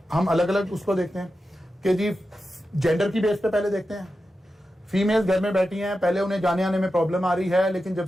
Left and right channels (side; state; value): both; normal; correlation 0.91